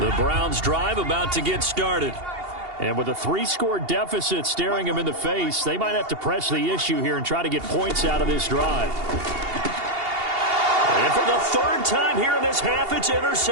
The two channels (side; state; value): left; late; 2.8 ms